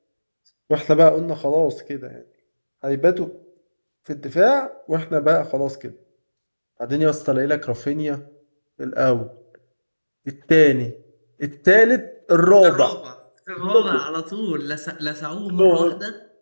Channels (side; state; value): both; inverted; correlation -1.00